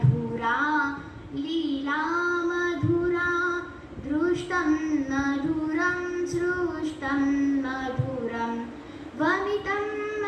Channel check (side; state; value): both; identical; correlation 1.00